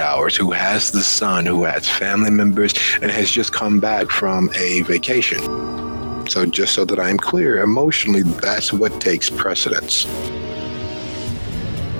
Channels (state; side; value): inverted; both; correlation -1.00